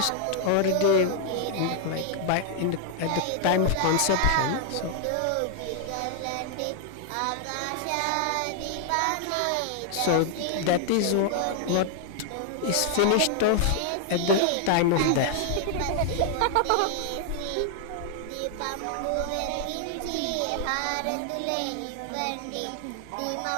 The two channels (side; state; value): both; different; correlation 0.00